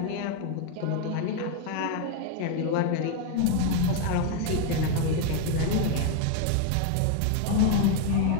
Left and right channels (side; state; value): both; different; correlation 0.01